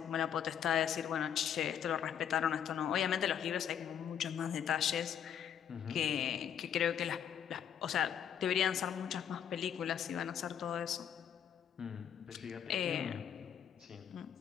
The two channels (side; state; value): right; quieter; 8.9 dB